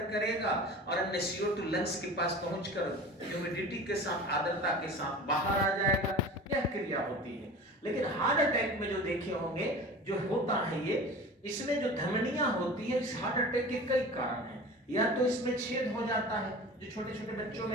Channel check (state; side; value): normal; both; correlation 0.37